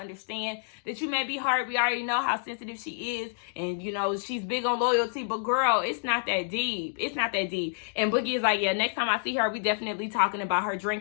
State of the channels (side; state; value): right; silent; digital silence